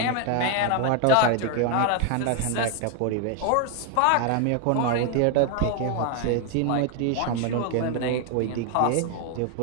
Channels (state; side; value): different; both; correlation 0.01